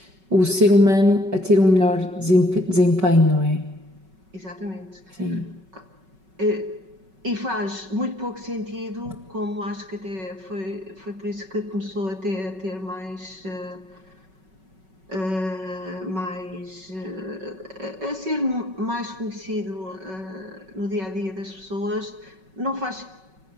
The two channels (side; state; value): left; late; 5.3 ms